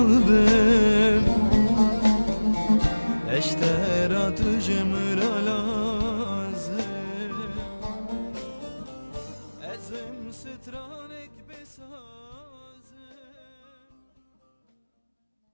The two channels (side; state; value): both; inverted; correlation -1.00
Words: eştera tujmra lazım ezim stranek besazım